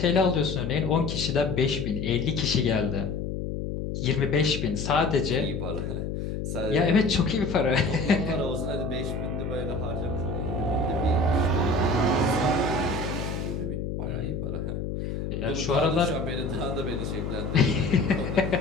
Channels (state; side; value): noise; left; hum, 4 dB below the sound